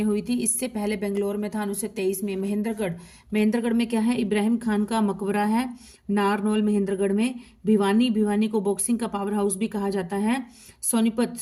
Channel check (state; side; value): identical; both; correlation 1.00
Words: हुई थी। इससे पहले बेंगलोर में था 1923 में। महेंद्रगढ़ में क्या है? इब्राहिम खान का मकबरा है। नारनौल महेंद्रगढ़ में। भिवानी को बॉक्सिंग का पावर हाउस भी कहा जाता है।